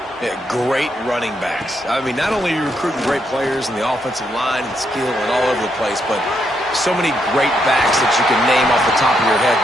Yeah, great running backs. I mean, not only are you recruiting great players in the offensive line and skill and all over the place, but so many great backs that you can name off the top of your head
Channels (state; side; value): normal; both; correlation 0.78